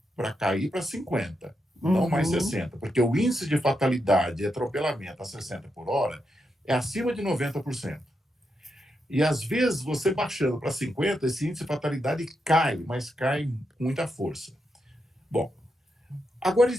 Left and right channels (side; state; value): both; normal; correlation 0.84